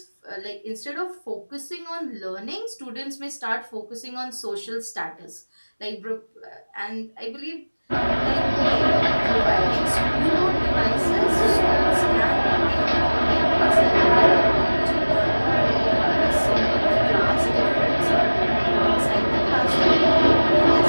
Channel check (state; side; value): inverted; both; correlation -1.00